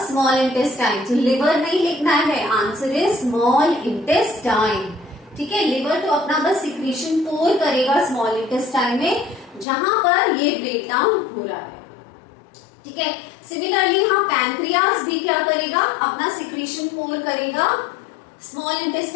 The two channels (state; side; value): drops out; right; at 9.7 s